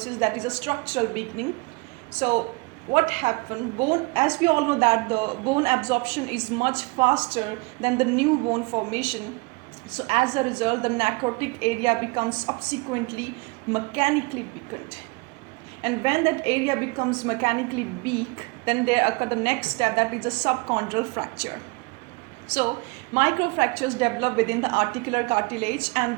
that is a structural weakening. So what happened? Bone, as we all know that the bone absorption is much faster than the new bone formation. So as a result, the necrotic area becomes subsequently mechanically weakened. And when that area becomes mechanically weak, then there occur the next step, that is a subchondral fracture. So microfractures develop within the articular cartilage,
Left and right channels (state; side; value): quieter; left; 27.5 dB